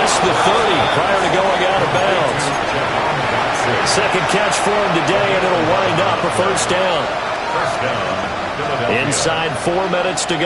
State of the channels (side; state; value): both; identical; correlation 1.00